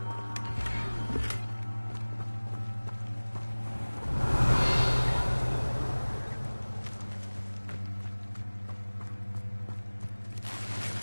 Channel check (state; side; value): inverted; both; correlation -1.00